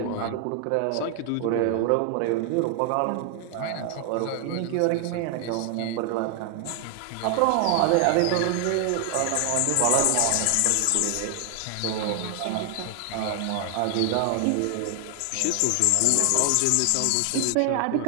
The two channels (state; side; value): different; both; correlation 0.00